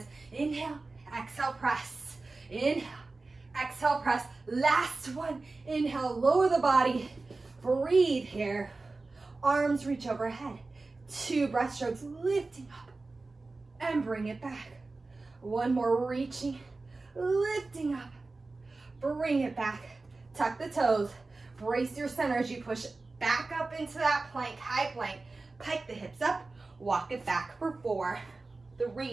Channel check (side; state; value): left; quieter; 3.5 dB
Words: Inhale, exhale, press. Inhale, exhale, press. Last one. Inhale, lower the body. Breathe here. Arms reach overhead. 2 breaststrokes, lifting up and bring it back. 1 more, reaching, lifting up, bring it back. Tuck the toes, brace your center as you push back up into that plank, high plank. Pike the hips up, walk it back for 4,